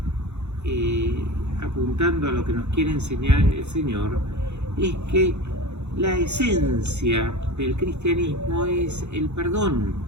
apuntando a lo que nos quiere enseñar el Señor, es que la esencia del cristianismo es el perdón.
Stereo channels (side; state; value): left; late; 0.82 ms